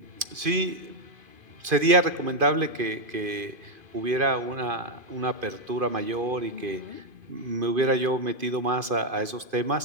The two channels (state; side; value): late; left; 2.5 ms